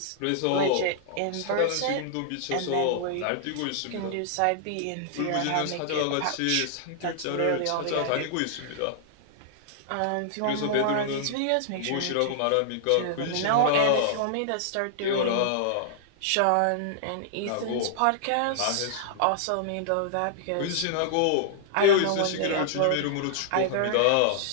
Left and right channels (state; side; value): different; both; correlation -0.01